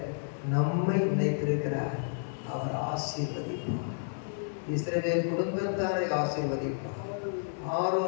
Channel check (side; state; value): right; silent; digital silence